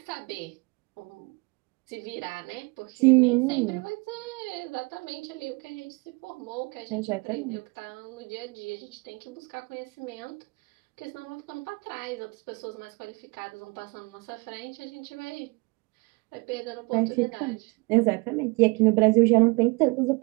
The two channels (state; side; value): quieter; left; 28.0 dB